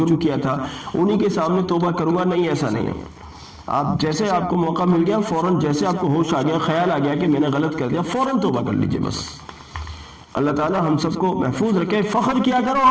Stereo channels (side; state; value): both; identical; correlation 1.00